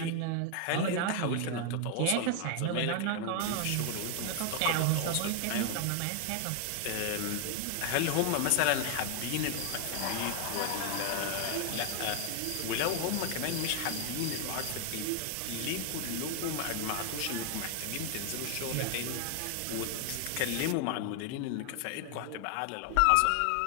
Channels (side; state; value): both; different; correlation 0.00